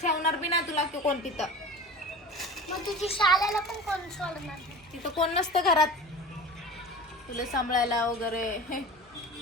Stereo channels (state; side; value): normal; both; correlation 0.36